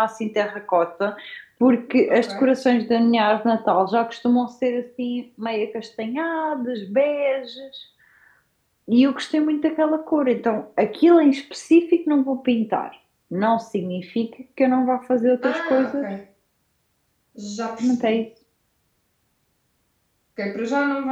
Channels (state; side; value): identical; both; correlation 1.00